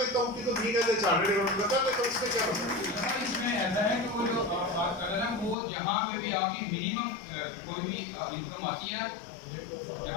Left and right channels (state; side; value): drops out; right; at 5.6 s